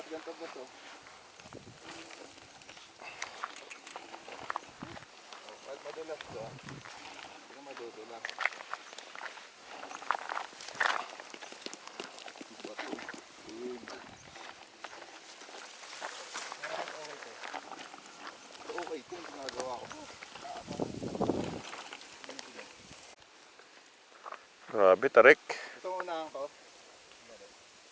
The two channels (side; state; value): both; identical; correlation 1.00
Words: ganito ba to? Ba't madulas to? Hindi ka madudulas. Okay, ito yung ginagawa ko. Grabe, tarik. Ito muna ang